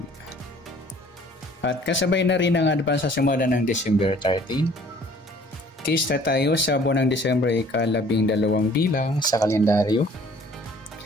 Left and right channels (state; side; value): normal; both; correlation 0.54